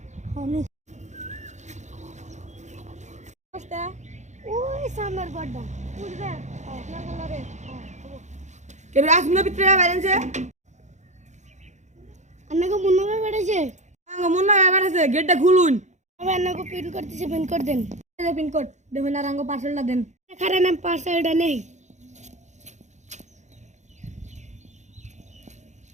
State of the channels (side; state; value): left; late; 0.34 ms